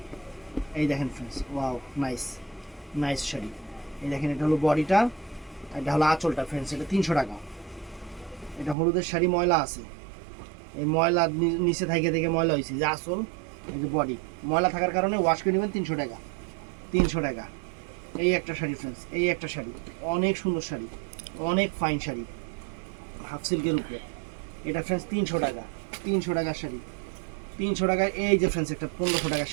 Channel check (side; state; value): left; drops out; at 8.8 s